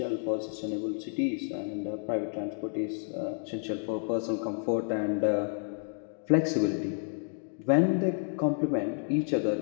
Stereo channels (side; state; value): right; silent; 58 dB below the other